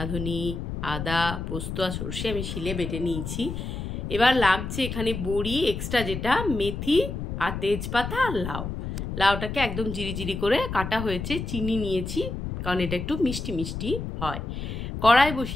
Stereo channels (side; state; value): left; noise; rumble, 5 dB below the sound